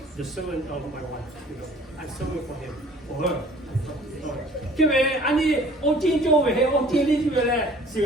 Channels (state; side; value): normal; both; correlation 0.52